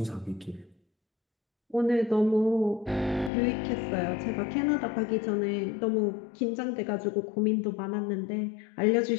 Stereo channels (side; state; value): right; drops out; at 3.3 s